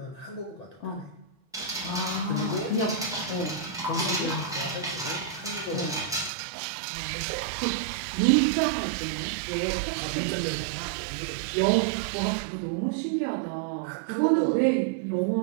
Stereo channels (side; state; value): left; drops out; at 6.3 s